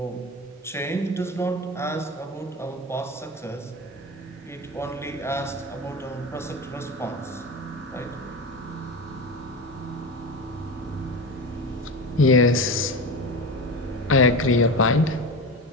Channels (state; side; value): normal; both; correlation 0.25